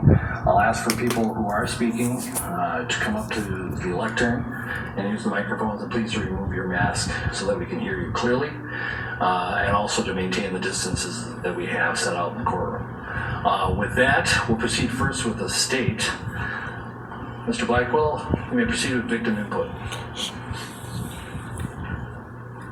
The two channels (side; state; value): both; identical; correlation 1.00